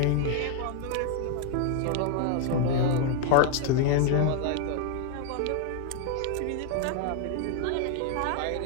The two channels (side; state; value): both; different; correlation 0.00